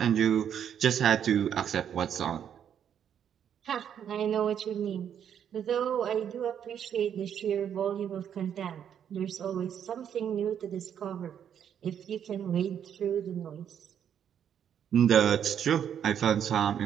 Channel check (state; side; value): quieter; left; 8.9 dB